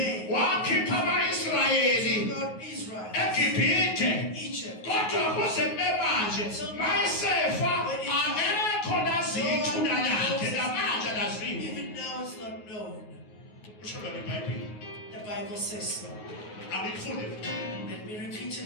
wakhipha ama-Israyeli God Israel, eGibhithe. Egypt, Kodwa kuze kube manje mayesefa akekho lazi ithuna lakhe namanje alaziwa. even now it's not known. Kusho lona iBhayibheli. The Bible says so. Angikufunde. Let me repeat it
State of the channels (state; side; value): late; right; 9.5 ms